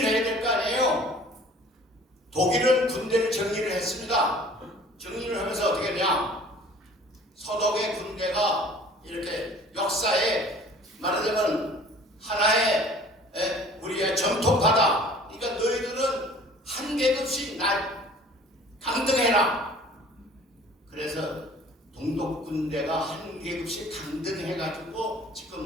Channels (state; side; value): normal; both; correlation 0.49